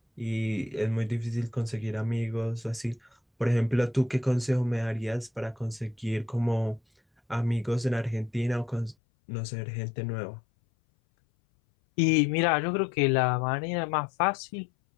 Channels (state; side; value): drops out; right; at 9.0 s